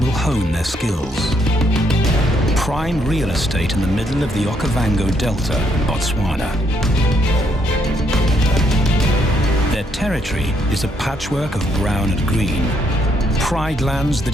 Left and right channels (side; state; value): both; normal; correlation 0.72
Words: hone their skills. Prime real estate in the middle of the Okavango Delta in Botswana. Their territory is a patchwork of brown and green. Pride lands